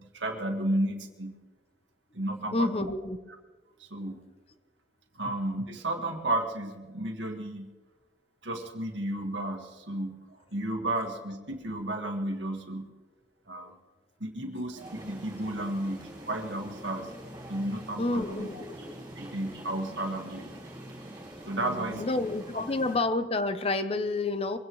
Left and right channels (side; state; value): both; normal; correlation 0.39